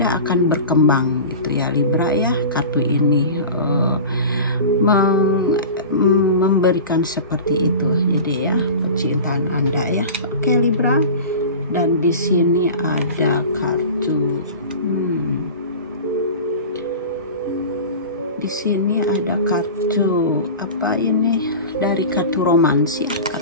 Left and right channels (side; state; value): both; inverted; correlation -0.34